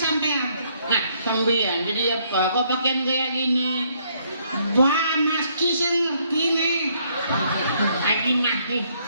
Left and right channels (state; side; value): inverted; both; correlation -0.69